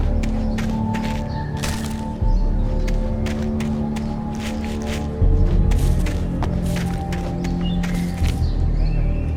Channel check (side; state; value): both; identical; correlation 1.00